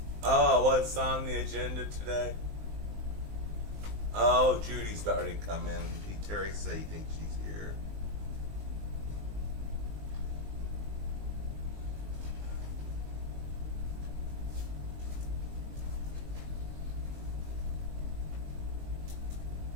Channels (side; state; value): left; late; 19 ms